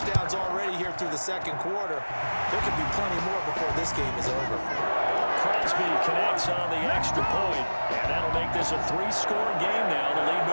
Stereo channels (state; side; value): inverted; both; correlation -1.00